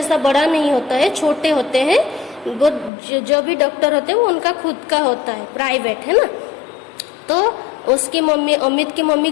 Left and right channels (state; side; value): drops out; right; at 2.9 s